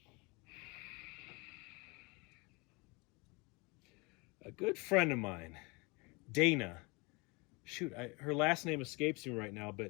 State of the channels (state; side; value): quieter; right; 27.7 dB